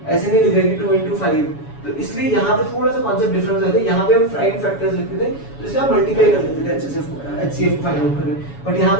ऐसे नहीं लिख रहे कि 2 into 5। तो इसलिए यहाँ पे थोड़ा सा कॉन्सेप्ट डिफरेंस आता है। यहाँ पे हम प्राइम फैक्टर्स लिखते थे, तो इसलिए आप मल्टीप्लाई कर लेते थे HCF को फाइंड आउट करने। बट यहाँ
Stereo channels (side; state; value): right; late; 7.1 ms